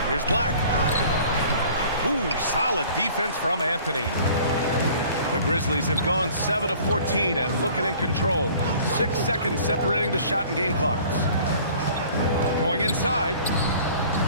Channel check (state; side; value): inverted; both; correlation -0.50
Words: Here's Black. Ooh, solid defense from Anthony. The Grizzlies have gone 7 of 14 and looking in control. 6 seconds separating the shot and game clocks. Going inside.